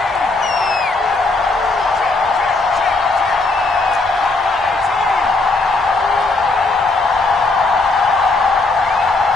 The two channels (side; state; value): right; quieter; 3.4 dB